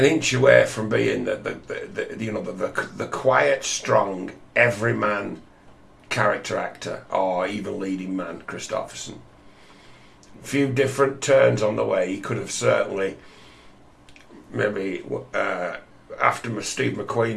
inch away from being the quiet, strong, everyman character actor, or even leading man, Kristofferson. A few different turns on the way. He could have certainly, maybe after Steve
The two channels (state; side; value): identical; both; correlation 1.00